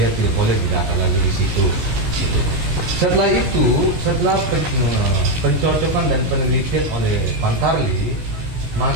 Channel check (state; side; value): late; left; 17 ms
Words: tidak boleh didata lagi di situ. Setelah itu, setelah pencocokan dan penelitian oleh Pantarli,